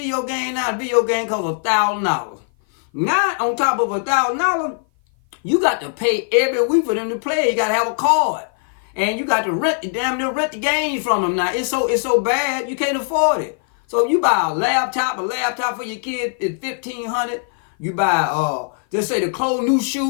game now, a video game costs $1,000. Now, on top of $1,000, you got to pay every week for them to play. You got to have a card. And you got to rent the games from them now. It's so bad you can't afford it. So you buy a laptop for your kid is $1,500. You buy just say the clothes, new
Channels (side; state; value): right; silent; 56 dB below the other